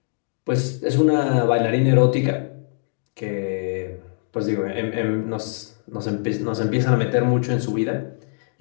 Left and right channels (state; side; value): silent; right; digital silence